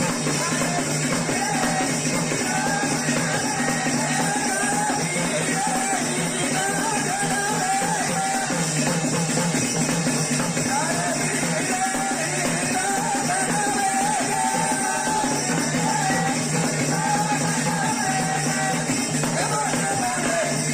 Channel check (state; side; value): identical; both; correlation 1.00